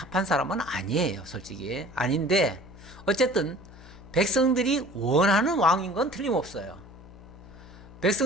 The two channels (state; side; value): noise; left; hum, 19 dB below the sound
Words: 사람은 아니에요. 솔직히 아닌데 어쨌든 백성들이 원하는 왕인 건 틀림없어요.